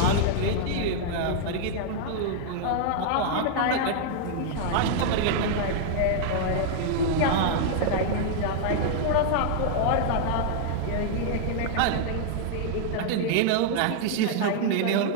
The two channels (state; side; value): different; both; correlation 0.00